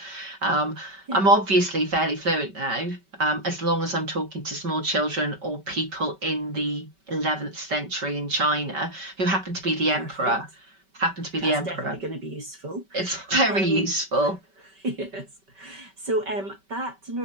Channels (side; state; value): left; late; 5.2 ms